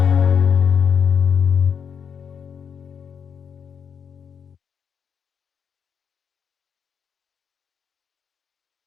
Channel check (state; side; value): quieter; right; 7.2 dB